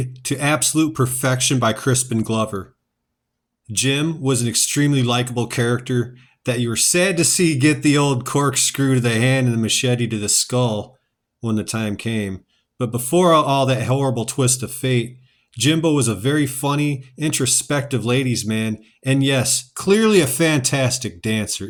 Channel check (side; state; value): both; identical; correlation 1.00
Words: to absolute perfection by Crispin Glover. Jim was an extremely likable character that you were sad to see get the old corkscrew to the hand and the machete to the skull when the time came. But before all that horrible twist of fate, Jimbo was a very funny, introspective ladies' man, and yes, clearly a fantastic dancer